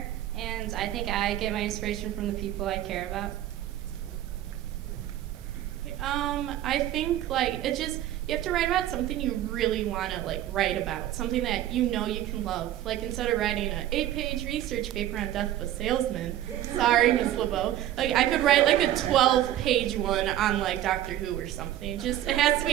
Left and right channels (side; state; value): left; quieter; 12.8 dB